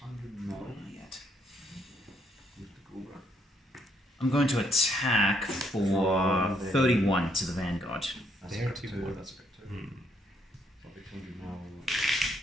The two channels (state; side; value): normal; both; correlation 0.72